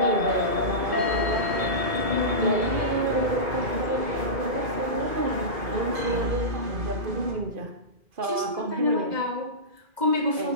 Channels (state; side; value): late; left; 2.0 ms